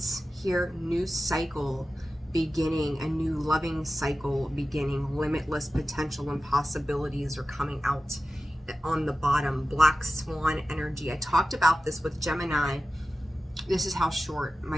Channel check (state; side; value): normal; both; correlation 0.94